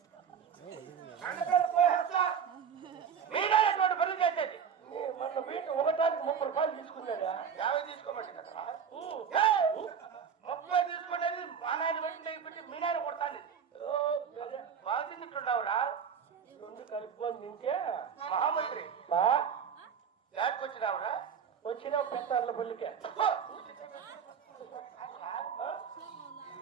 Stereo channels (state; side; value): quieter; left; 7.3 dB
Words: ఎటువంటి పనులు చేసేది మన వీటి ఒకటానికి 30 రూపాయలు తీసుకున్నాడా? 50 తీసుకోమండి కదా. 30 తీసుకునేది మా నాయన పెట్టి మీ నాయన కొడతాను. బాగా తింటుండవురా. రెండు కలుపుకొని తింటే మహామంత్రి యాడ్కి వచ్చినావురా. వచ్చిన పెద్ద పల్లికే